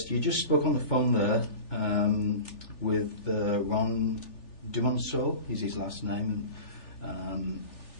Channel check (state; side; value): late; right; 3.4 ms